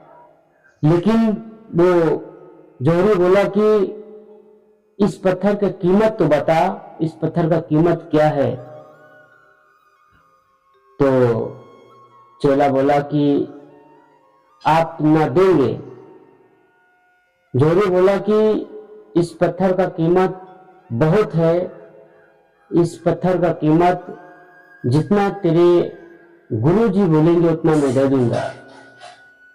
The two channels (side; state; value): both; identical; correlation 1.00